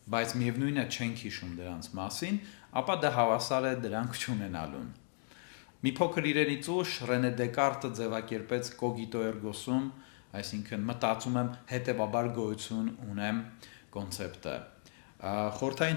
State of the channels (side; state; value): right; silent; 54 dB below the other